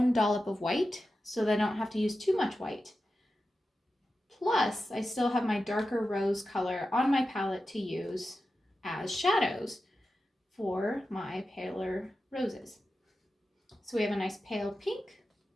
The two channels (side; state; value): both; normal; correlation 0.92